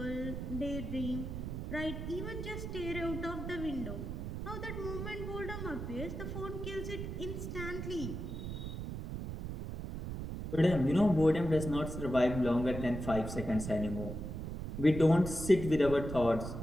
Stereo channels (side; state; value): right; noise; rumble, 6 dB below the sound